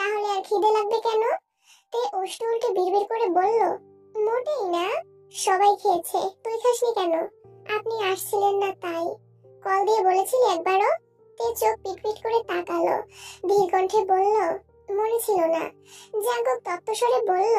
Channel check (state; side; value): identical; both; correlation 1.00